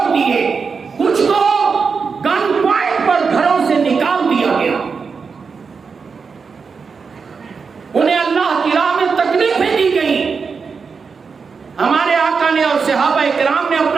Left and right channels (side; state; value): left; quieter; 5.3 dB